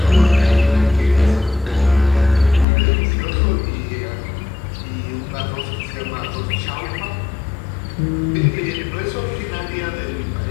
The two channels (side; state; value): right; drops out; at 2.7 s